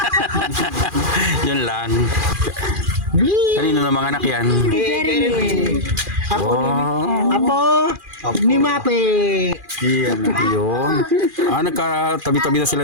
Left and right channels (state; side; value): late; left; 2.4 ms